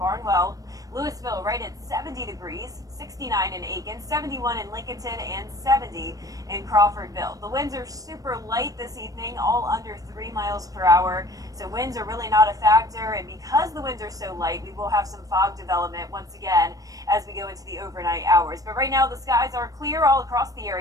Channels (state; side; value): late; left; 0.17 ms